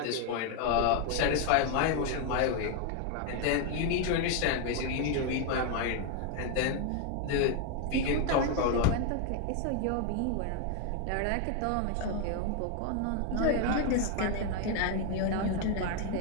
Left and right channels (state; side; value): different; both; correlation 0.01